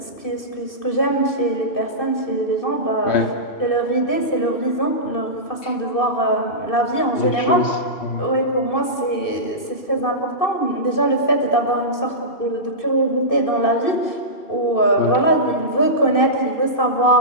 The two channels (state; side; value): late; right; 2.6 ms